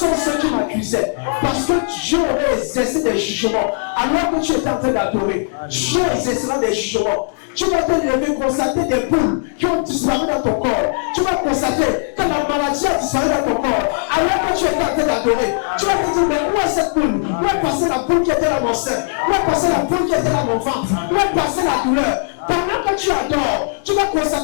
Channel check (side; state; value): right; silent; digital silence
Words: ceux qui m'accusaient? Parce que Dieu aurait exercé des jugements. Alors que tu étais en train d'adorer, Dieu exercera des jugements. Tu vas te lever, constater des boules qui ont disparu dans ton corps. Tu vas constater que la maladie a disparu dans ton corps. Alors que tu étais en train d'adorer, tu vas te dire, mais où est cette boule? Où est passée la boule qui était dans mon sein? Où est passée la boule qui était dans mon ventre? Où est passée la douleur? Pendant que tu adores, tu vas